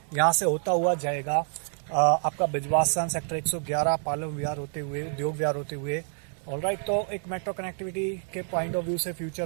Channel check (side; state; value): left; silent; 56 dB below the other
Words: यहाँ से होता हुआ जाएगा आपका बिजवासन, सेक्टर 111, पालम विहार होते हुए, उद्योग विहार होते हुए। ऑलराइट, तो एक मेट्रो कनेक्टिविटी के पॉइंट ऑफ व्यू से